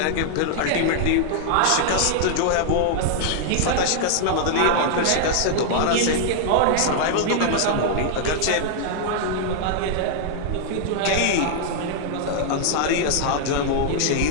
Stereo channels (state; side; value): different; both; correlation -0.01